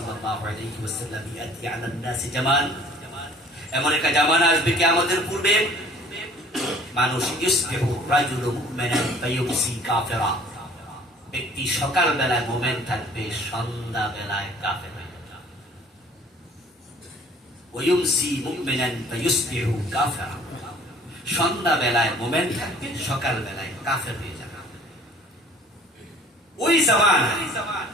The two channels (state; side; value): normal; both; correlation 0.52